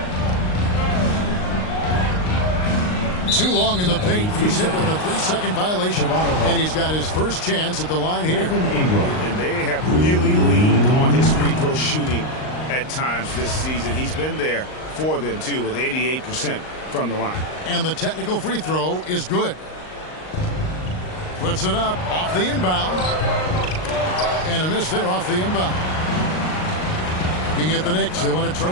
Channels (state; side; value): late; right; 38 ms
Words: Too long in the paint. He's hit with a 3-second violation. And he's got his first chance at the line here. And they have really leaned on his free throw shooting at times this season. He's been there for them, too, with 88% from the line. And the technical free throw is good. Puts it up off the inbound. And a miss there off the inbound. Looking at the Knicks, they want to turn